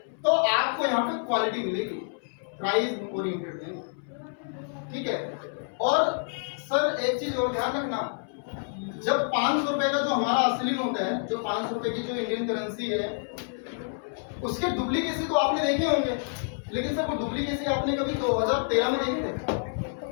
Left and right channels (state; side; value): silent; right; 59 dB below the other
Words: तो आपको यहाँ पे क्वालिटी मिलेगी, प्राइस ओरिएंटेड नहीं, ठीक है। और सर एक चीज और ध्यान रखना, जब 500 रुपए का जो हमारा असली नोट है, जो 500 रुपए की जो इंडियन करेंसी है, उसके डुप्लीकेसी तो आपने देखे होंगे, लेकिन सर वो डुप्लीकेसी आपने कभी 2013 में देखे थे?